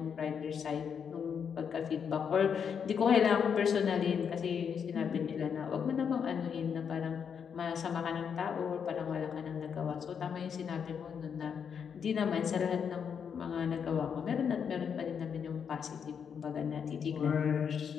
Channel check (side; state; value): right; quieter; 7.2 dB